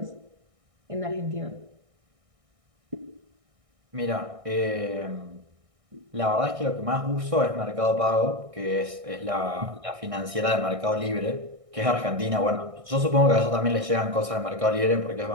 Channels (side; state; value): left; late; 1.6 ms